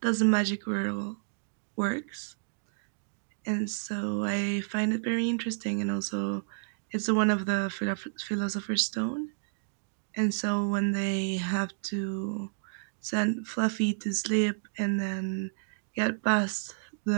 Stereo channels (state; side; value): silent; left; digital silence